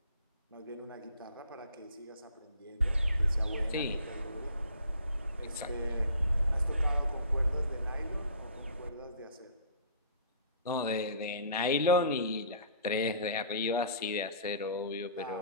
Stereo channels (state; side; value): inverted; both; correlation -0.50